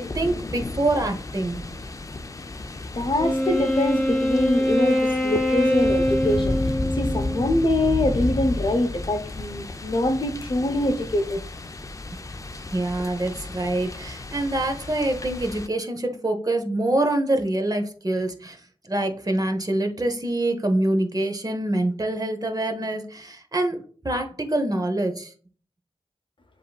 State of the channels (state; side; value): normal; both; correlation 0.82